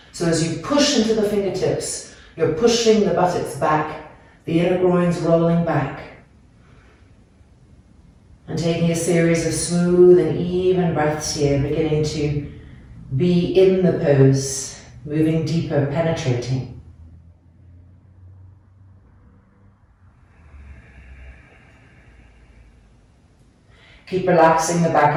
So as you push into the fingertips, you're pushing the buttocks back, the inner groins rolling back. And taking a series of smooth and even breaths here, beginning to be in the pose, moving deeper, penetrating. Keep relaxing the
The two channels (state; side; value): identical; both; correlation 1.00